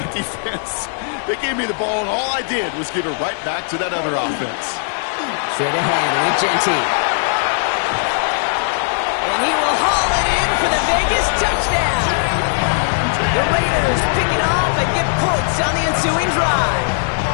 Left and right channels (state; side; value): silent; right; digital silence